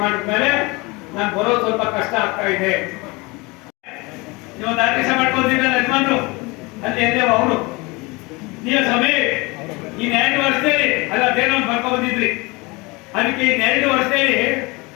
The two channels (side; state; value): right; quieter; 25.4 dB